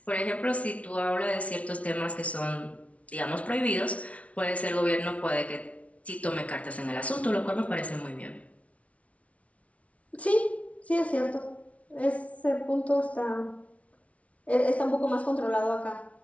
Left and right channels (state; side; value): late; right; 0.065 ms